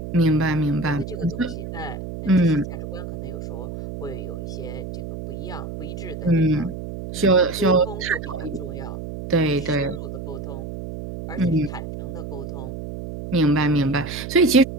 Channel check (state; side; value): noise; right; hum, 8 dB below the sound